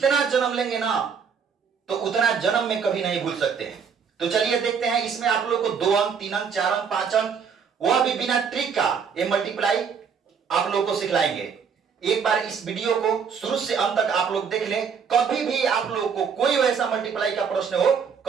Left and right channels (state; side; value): quieter; left; 6.5 dB